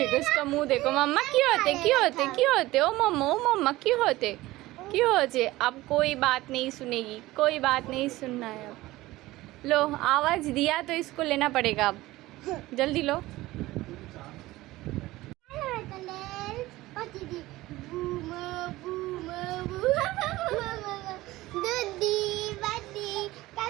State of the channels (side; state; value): left; quieter; 18.0 dB